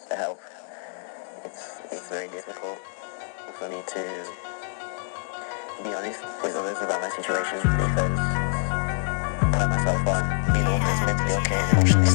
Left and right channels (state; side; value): silent; right; 61 dB below the other